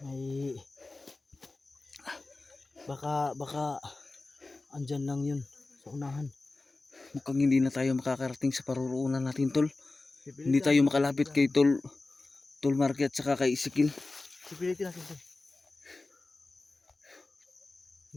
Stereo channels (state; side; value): quieter; right; 3.3 dB